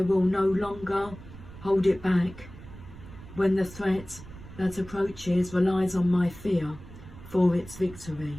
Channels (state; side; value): noise; right; rumble, 16 dB below the sound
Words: will no longer hold it back when the threat that approaches relies on my fear for its victory.